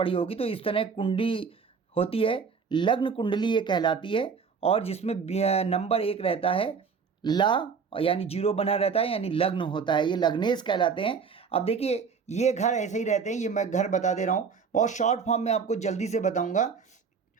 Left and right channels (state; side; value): quieter; left; 5.8 dB